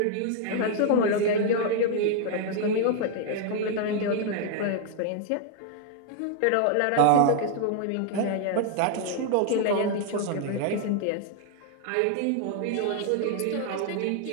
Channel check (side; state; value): both; different; correlation 0.00